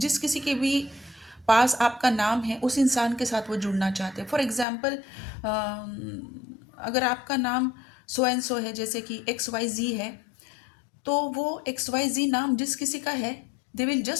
किसी के भी पास आपका नाम है उस इंसान के साथ वो जुड़ना चाहते हैं। फॉर एग्ज़ाम्पल अगर आपका नाम सो एंड सो है, जैसे कि एक्स वाई जी है, तो वो एक्स वाई जी नाम जिस किसी का है, they will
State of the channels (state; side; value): drops out; right; at 4.7 s